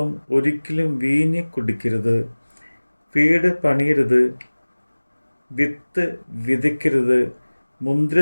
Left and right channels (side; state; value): both; inverted; correlation -1.00